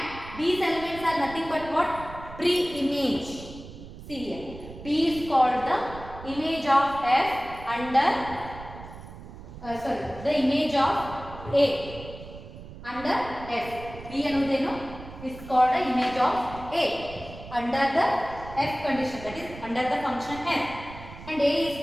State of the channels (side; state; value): right; noise; rumble, 14 dB below the sound